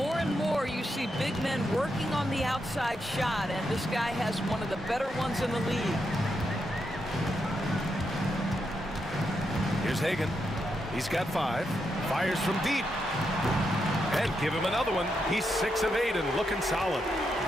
and more you see big men working on the outside shot, and this guy has one of the better ones in the league. Here's Hagan. He's got 5. Fires from deep. And give him another one. He's 6 of 8 and looking solid.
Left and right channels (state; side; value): normal; both; correlation 0.83